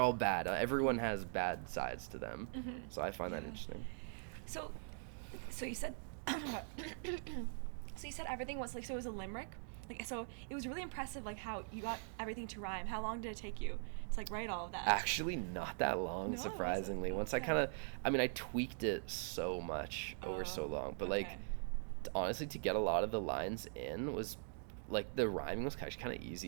bad. Everyone has bad sides to them. So I find that interesting. So you said. So you said everything was like, so it was a limerick? Like, so it was really impressive, like, how you got everything to rhyme. How long did it take you to, like, write all of that? Actually, not that long, surprisingly. Once I tweaked it so much over so long. But, like, honestly, to get a lot of the lines in was, like, the rhyming was actually kind of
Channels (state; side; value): silent; left; digital silence